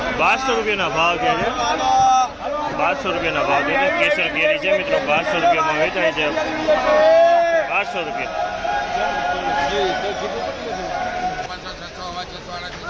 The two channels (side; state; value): both; identical; correlation 1.00